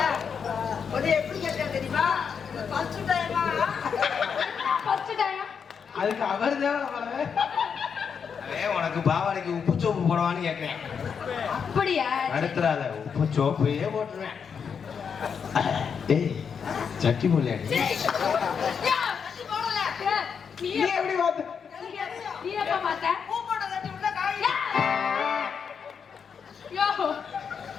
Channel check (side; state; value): right; quieter; 6.6 dB